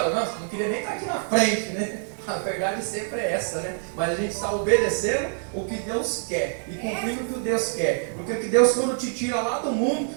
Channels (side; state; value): left; silent; 61 dB below the other